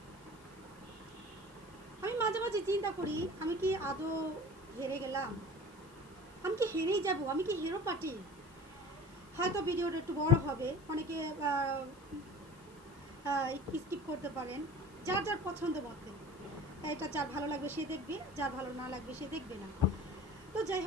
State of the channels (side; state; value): left; noise; hiss, 26 dB below the sound